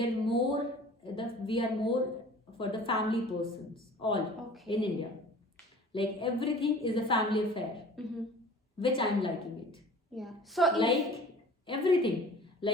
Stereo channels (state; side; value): normal; both; correlation 0.45